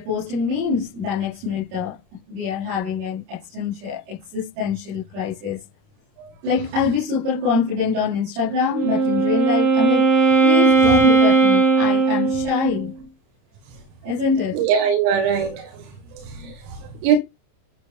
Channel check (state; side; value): late; left; 30 ms